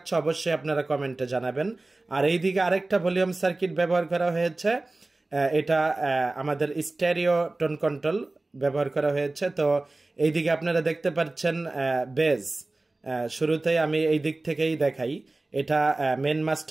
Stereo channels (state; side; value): quieter; left; 3.0 dB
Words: অবশ্যই আপনারা কমেন্টে জানাবেন। আর এইদিকে আরেকটা ভলিউম সার্কিট ব্যবহার করা হয়েছে, এটা আমাদের স্টেরিও টোন কন্ট্রোল ব্যবহার করা হয়েছে। তো এইদিকে আপনারা দেখতে পাচ্ছেন বেজ। শুরুতেই আমি এই দিক থেকেই দেখাই, এটা মেন